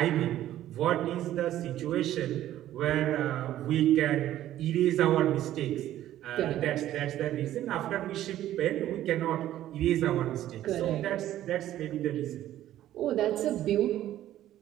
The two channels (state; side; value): quieter; left; 13.0 dB